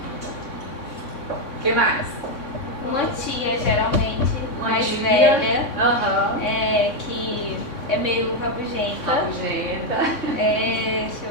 O que mais? Uma tia, geralmente, Uma mais tia. velha, Uhum. que é meio rabugenta. Rabugenta. Deixa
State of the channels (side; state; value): right; late; 3.6 ms